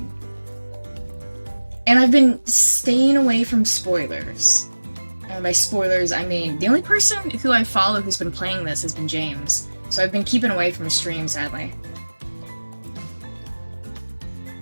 And I've been staying away from spoilers. And by spoilers, I mean, the only person who I follow who's been playing this has been James. So I've been keeping away from his stream, sadly.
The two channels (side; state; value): both; inverted; correlation -1.00